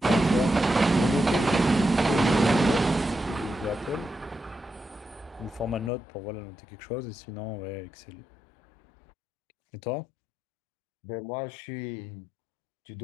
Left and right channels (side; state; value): right; drops out; at 5.9 s